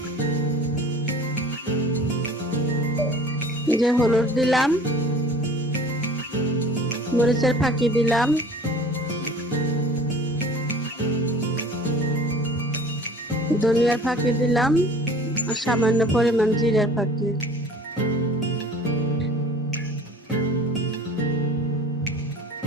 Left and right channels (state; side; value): normal; both; correlation 0.45